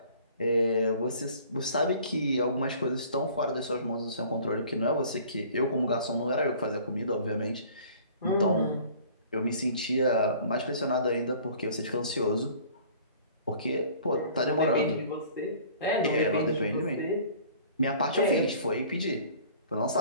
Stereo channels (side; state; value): both; inverted; correlation -0.50